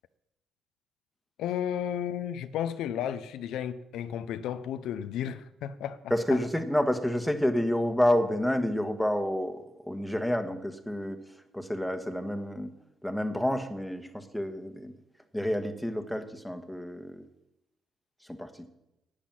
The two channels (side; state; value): both; normal; correlation 0.90